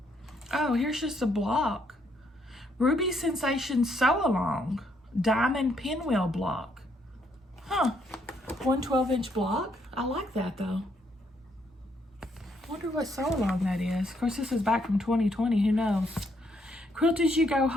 Oh, here's just a block. Ruby Sensation Sew Along Diamond Pinwheel block. Huh. 1 12-inch block. I like that though. Wonder what sew along that is. Of course, this is back from 2020. Who knows? Quilt As You Go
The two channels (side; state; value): both; normal; correlation 0.72